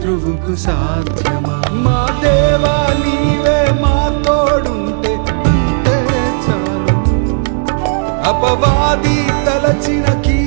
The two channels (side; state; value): left; silent; digital silence